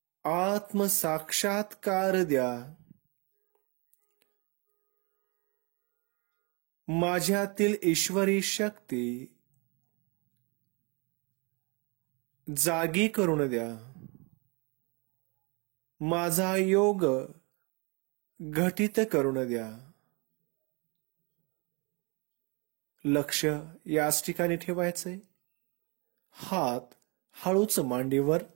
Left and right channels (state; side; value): quieter; left; 31.1 dB